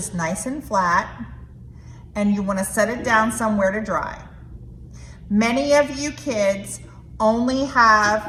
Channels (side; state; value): both; identical; correlation 1.00